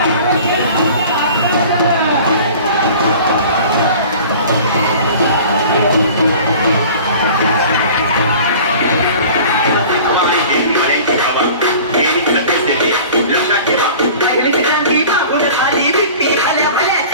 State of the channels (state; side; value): inverted; both; correlation -0.43